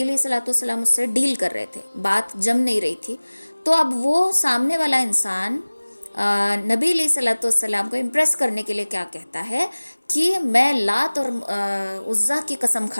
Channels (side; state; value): both; inverted; correlation -1.00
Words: علیہ الصلوۃ والسلام اس سے ڈیل کر رہے تھے، بات جم نہیں رہی تھی، تو اب وہ سامنے والا انسان نبی علیہ الصلوۃ والسلام کو امپریس کرنے کے لیے کیا کہتا ہے کہ میں لات اور عزیٰ کی قسم